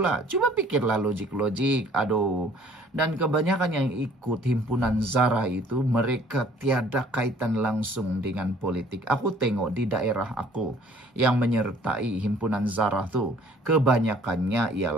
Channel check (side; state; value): both; normal; correlation 0.56